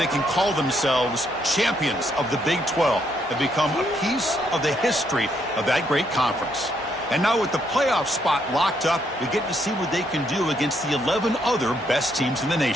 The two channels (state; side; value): normal; both; correlation 0.74